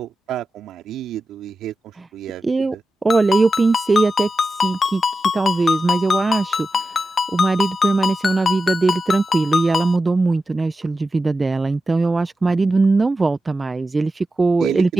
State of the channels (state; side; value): normal; both; correlation 0.92